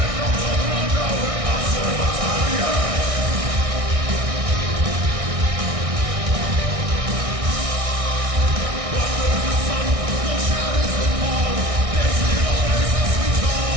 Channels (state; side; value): late; left; 1.6 ms